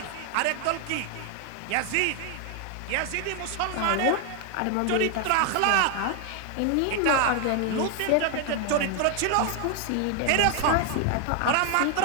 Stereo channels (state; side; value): different; both; correlation 0.01